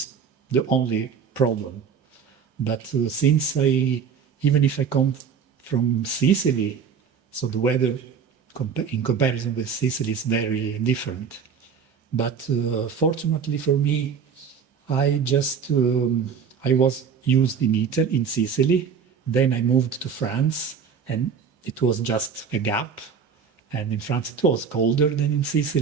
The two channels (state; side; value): quieter; left; 6.6 dB